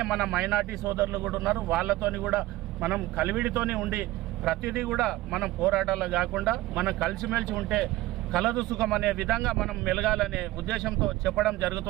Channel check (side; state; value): left; quieter; 17.6 dB